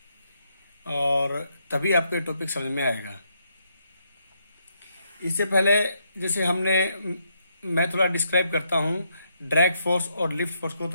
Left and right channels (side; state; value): both; inverted; correlation -0.77